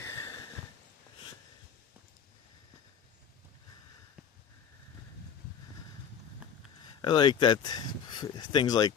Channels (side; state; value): right; quieter; 7.7 dB